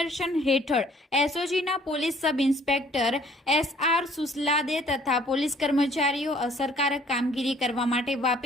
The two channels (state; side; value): normal; both; correlation 0.58